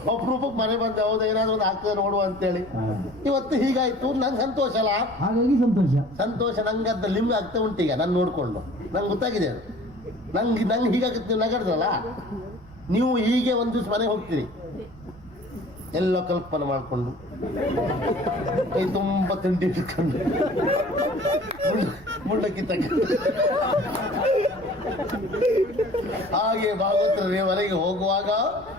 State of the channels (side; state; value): right; noise; rumble, 21 dB below the sound